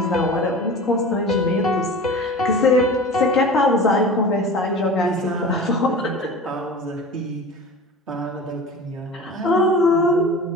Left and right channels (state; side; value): normal; both; correlation 0.36